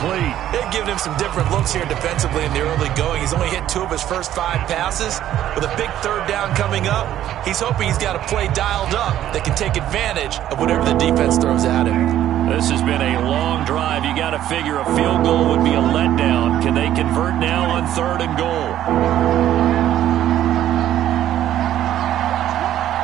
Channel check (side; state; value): left; quieter; 12.1 dB